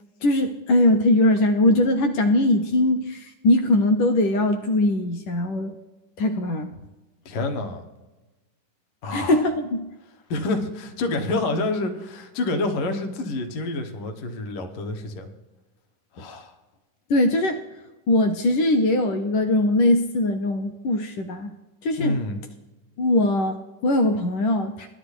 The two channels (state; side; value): late; right; 10 ms